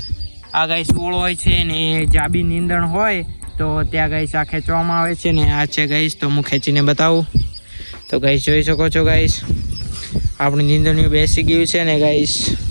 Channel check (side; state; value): both; inverted; correlation -1.00